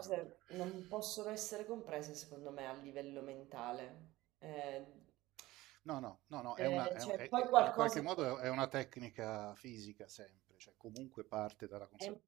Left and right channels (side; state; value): left; quieter; 18.1 dB